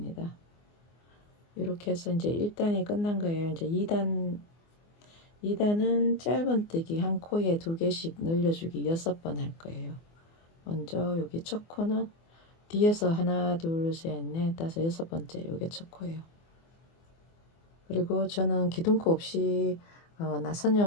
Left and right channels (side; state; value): right; late; 24 ms